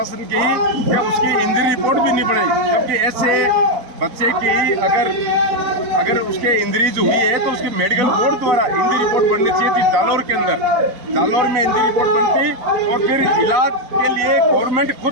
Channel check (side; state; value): left; late; 4.1 ms